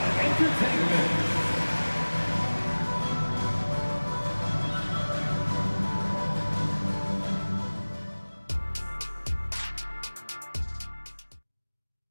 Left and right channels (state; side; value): inverted; both; correlation -1.00